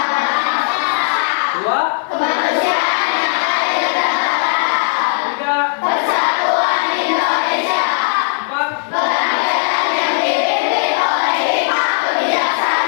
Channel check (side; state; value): right; silent; 67 dB below the other